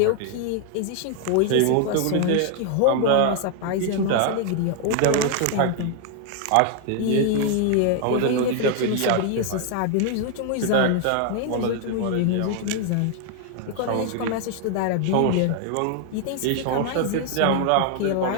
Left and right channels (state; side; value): different; both; correlation 0.00